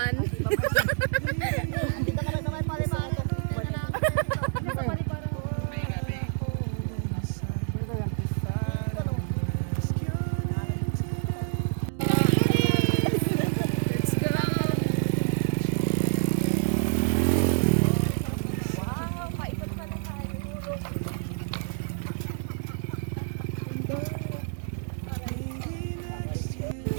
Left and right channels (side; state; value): left; silent; digital silence